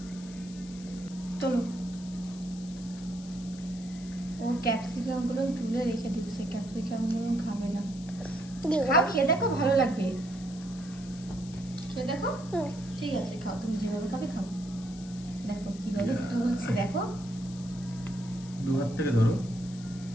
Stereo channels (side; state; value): left; noise; hiss, 19 dB below the sound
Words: চলো, ও ক্যাপসিকাম গুলো তুলে রেখে দিচ্ছে, ক্যাপসিকাম গুলো খাবে না। খাও, খেয়ে দেখো ভালো লাগবে। খেয়ে দেখো। ঠিক আছে খাও, তুমি যেভাবে খাবে খাও। দেখো কিভাবে তুলছে, দেখো দু হাত থেকে ধরো।